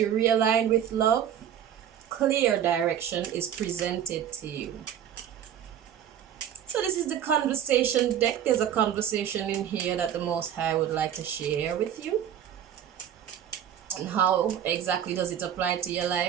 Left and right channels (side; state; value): left; quieter; 9.7 dB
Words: realign with love, clear direction is presented to you. So this is the conversation deck. There's a conversation in here that the Most High would like to share with you. And how exactly does it apply to your